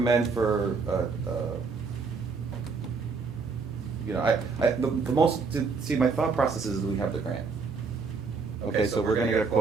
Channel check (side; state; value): left; quieter; 4.7 dB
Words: for? The most. See, my thought process is that we have the grant. Okay, so we're going to get a